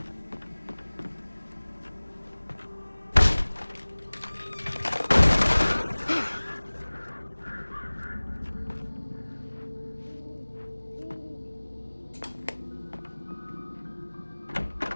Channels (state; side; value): inverted; both; correlation -1.00